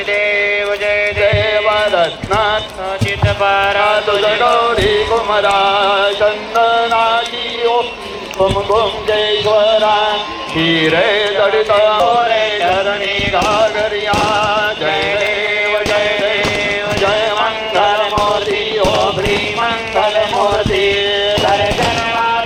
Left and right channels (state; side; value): identical; both; correlation 1.00